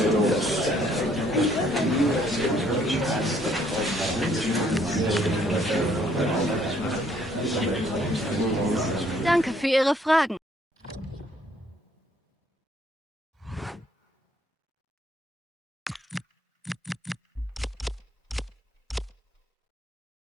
Danke für Ihre Fragen.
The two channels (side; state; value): both; normal; correlation 0.65